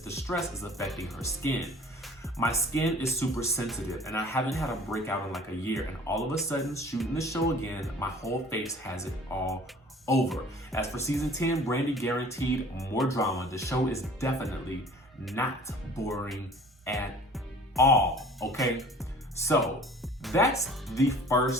the stress is affecting her skin. "My skin is super sensitive and I haven't had a breakout in like a year, and all of a sudden shooting the show again, my whole face has it all over." As for season 10, BRANDI guaranteed more drama. The show is definitely not boring at all, okay? So that's the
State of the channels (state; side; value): normal; both; correlation 0.48